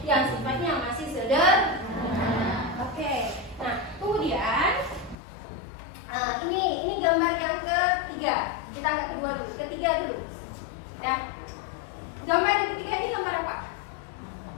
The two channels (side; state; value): right; drops out; at 5.2 s